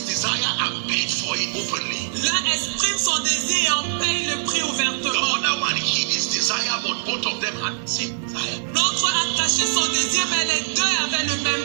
desire and paid for it openly. L'un exprime son désir et en paye le prix The ouvertement. other one hid his desire, but both of them had the same desire. L'autre a caché son désir, mais les deux avaient le même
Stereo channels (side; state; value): left; silent; digital silence